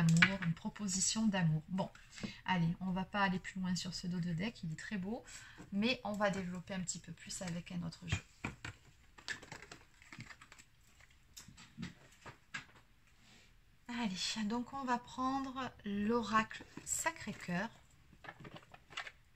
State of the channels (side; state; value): both; identical; correlation 1.00